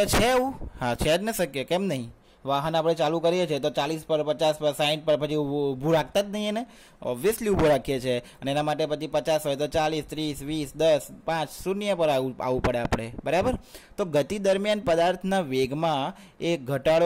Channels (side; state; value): both; identical; correlation 1.00